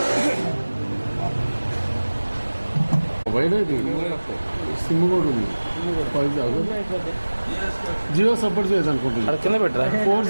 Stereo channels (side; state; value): both; inverted; correlation -1.00